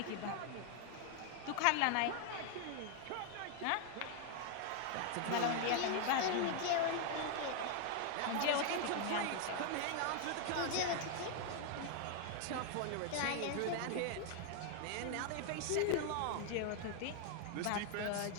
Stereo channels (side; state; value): both; different; correlation 0.00